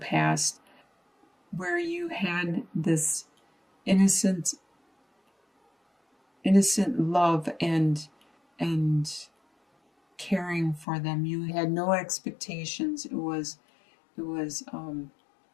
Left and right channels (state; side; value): drops out; right; at 10.9 s